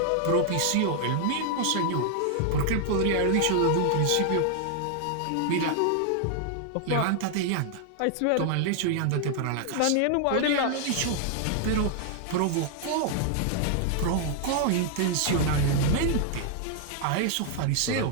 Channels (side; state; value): both; different; correlation 0.00